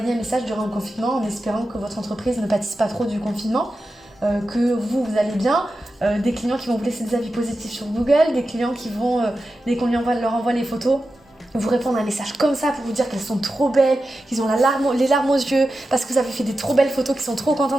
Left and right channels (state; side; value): normal; both; correlation 0.92